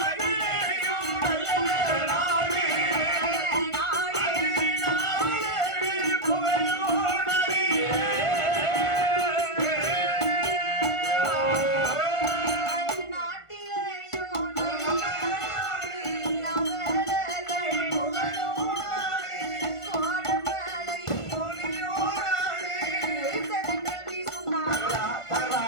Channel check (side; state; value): right; late; 1.5 ms